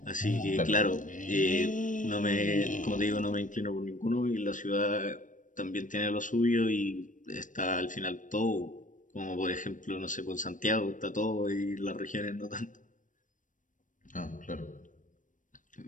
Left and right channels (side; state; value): right; late; 0.38 ms